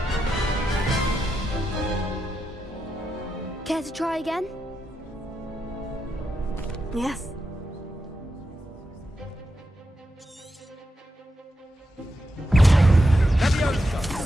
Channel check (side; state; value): both; normal; correlation 0.87